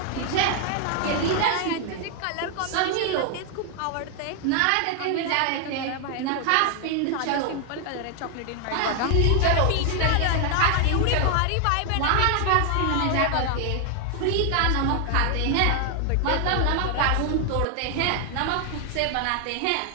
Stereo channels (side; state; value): both; different; correlation 0.00